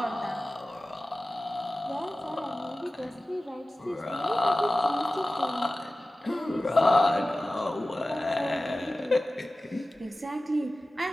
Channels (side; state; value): both; normal; correlation 0.96